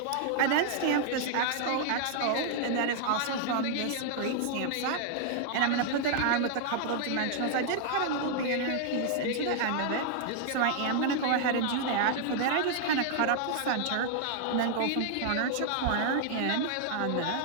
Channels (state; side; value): different; both; correlation 0.00